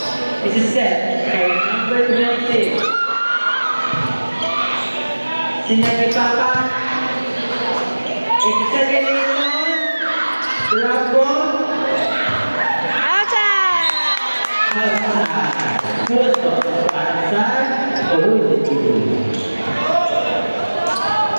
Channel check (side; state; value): both; inverted; correlation -1.00